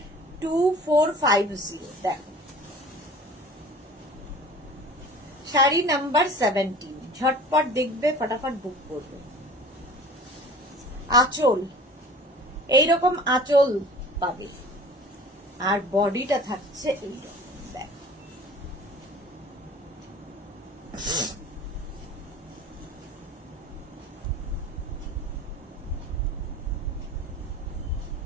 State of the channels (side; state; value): both; normal; correlation 0.44